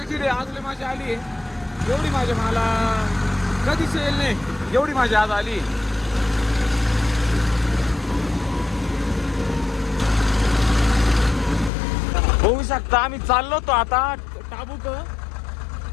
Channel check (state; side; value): drops out; right; at 11.7 s